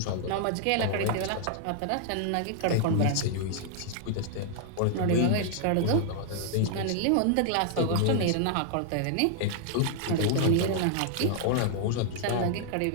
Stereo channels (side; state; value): both; different; correlation -0.01